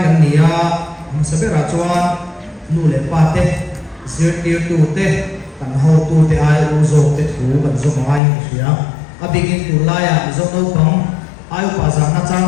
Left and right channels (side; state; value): right; drops out; at 8.2 s